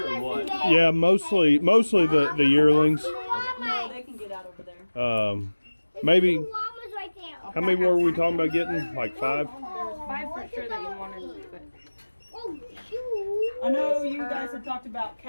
or what? Yeah, mostly the yearlings. No, they can get out over there. Maybe. How many were we talking about getting? Like 5? There's 5 for sure that you wanted, but I know you guys have talked about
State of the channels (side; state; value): both; inverted; correlation -1.00